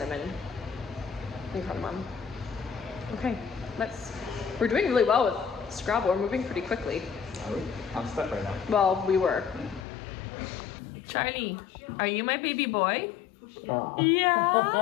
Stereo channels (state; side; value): drops out; right; at 9.9 s